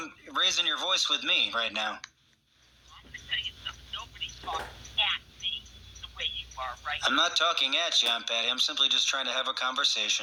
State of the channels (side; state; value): both; identical; correlation 1.00